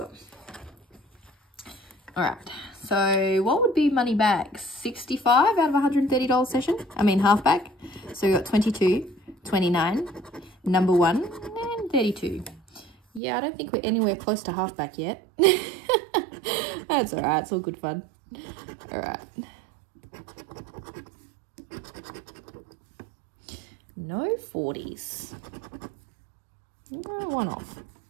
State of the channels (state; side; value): drops out; left; at 13.2 s